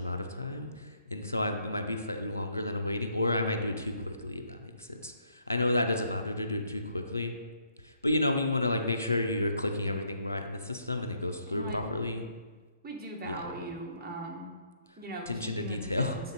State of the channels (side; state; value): both; inverted; correlation -0.70